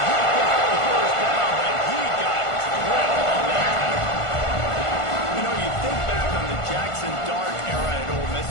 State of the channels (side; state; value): right; late; 1.5 ms